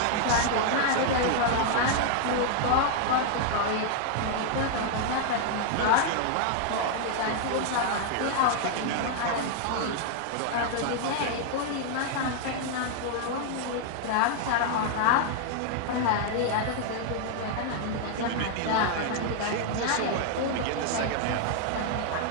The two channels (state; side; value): different; both; correlation 0.00